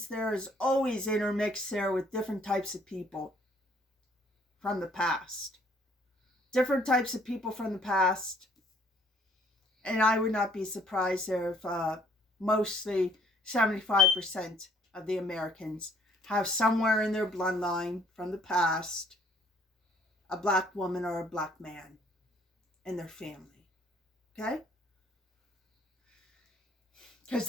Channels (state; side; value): normal; both; correlation 0.62